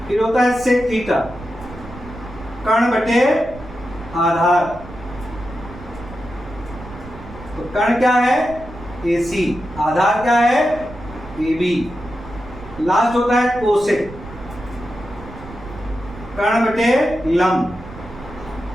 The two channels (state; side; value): noise; right; rumble, 15 dB below the sound